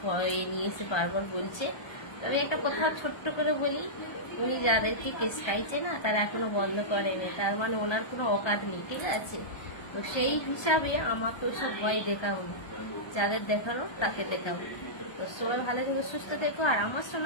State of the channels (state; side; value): late; right; 1.3 ms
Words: নিয়ে এসে বারবার বলছে। তবে একটা কথা ছোট্ট করে বলি, উনি যাদেরকে কেস খাইছে না তারা এখনো বন্ধ করেনি, তার মানে ওনার কোনো অকাত নেই, ঠিক আছে। তো সেই হিসাবে আমাকে ওসব ভয় দেখাবো, যাদের দেখানো তাকে দেখাবো। তো সবাই ভালো থেকো, সুস্থ থেকো, আর আমার